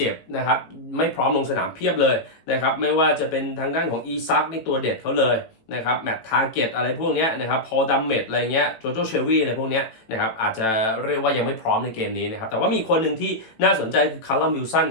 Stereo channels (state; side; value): late; right; 18 ms